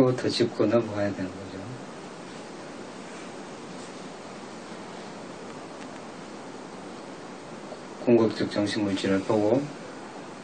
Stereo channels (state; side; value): identical; both; correlation 1.00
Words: 짚고 넘어가야 되는 거죠. 궁극적 정신물질을 보고,